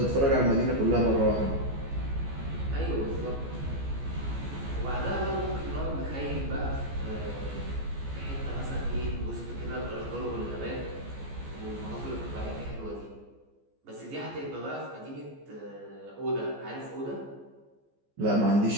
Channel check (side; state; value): left; late; 14 ms